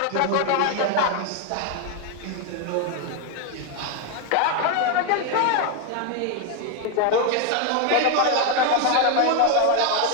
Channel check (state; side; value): different; both; correlation 0.01